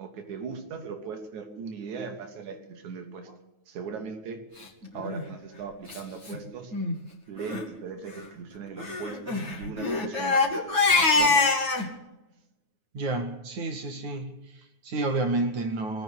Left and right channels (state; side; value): late; left; 9.4 ms